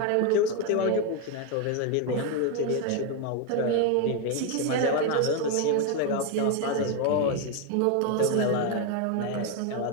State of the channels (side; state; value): both; different; correlation 0.01